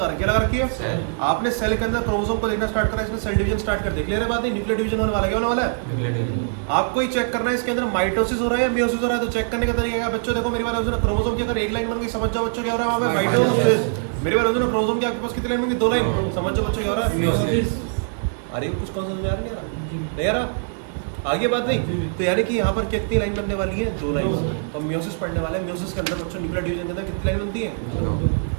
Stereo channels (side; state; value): left; silent; 64 dB below the other